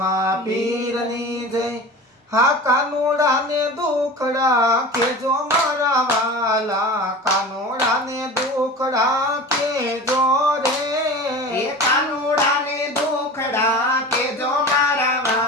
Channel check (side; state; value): both; normal; correlation 0.35